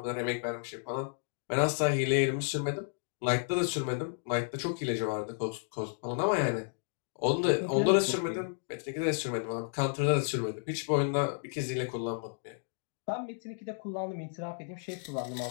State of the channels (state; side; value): silent; right; digital silence